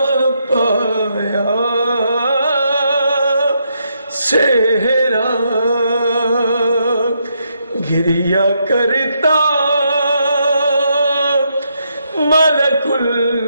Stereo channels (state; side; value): inverted; both; correlation -0.78